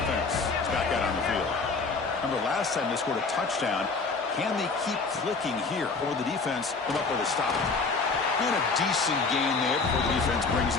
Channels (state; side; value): quieter; right; 4.3 dB